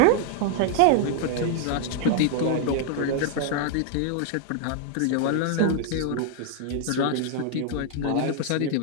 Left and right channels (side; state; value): both; different; correlation 0.00